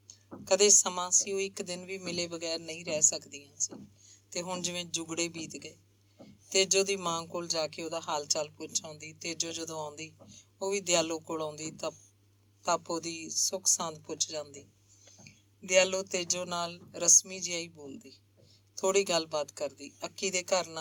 ਕਦੇ ਸਮਾਂ ਸੀ ਉਹ 1 ਦਿਨ ਵੀ ਮਿਲੇ ਬਗੈਰ ਨਹੀਂ ਰਹਿ ਸਕਦੀਆਂ ਸੀ, ਤੇ ਹੁਣ ਜਿਵੇਂ ਜੁਗੜੇ ਬੀਤ ਗਏ। ਤੇਜੋ ਦੀ ਮਾਂ ਕੋਲ ਜਾ ਕੇ ਉਹਦਾ ਹਾਲ ਚਾਲ ਪੁੱਛ ਆਉਂਦੀ। ਤੇਜੋ ਜਦੋਂ ਆਉਂਦੀ ਉਹ ਵੀ ਦਿਆਲੋ ਕੋਲ ਆਉਂਦੀ ਤਾਂ ਉਹਦੀ ਸੁੱਖ ਸਾਂਦ ਪੁੱਛ ਜਾਂਦੀ। ਦਿਆਲੋ ਤੇਜੋ ਨਾਲ ਰਸਮੀ ਜਿਹਾ ਹੀ ਬੋਲਦੀ, ਥੋੜ੍ਹੀ ਗੱਲਬਾਤ ਕਰਦੀ। ਅੱਕੀ ਦੇ ਘਰ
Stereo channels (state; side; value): identical; both; correlation 1.00